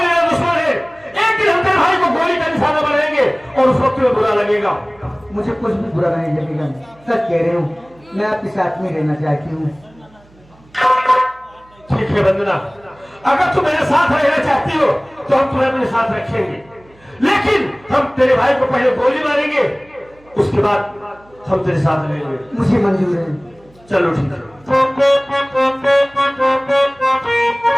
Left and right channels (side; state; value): right; noise; hum, 29 dB below the sound